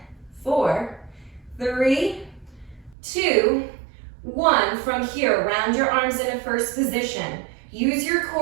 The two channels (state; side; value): drops out; left; at 3.0 s